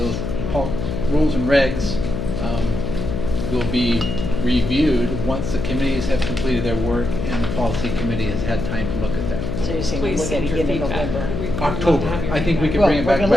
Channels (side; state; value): left; noise; hum, 3 dB below the sound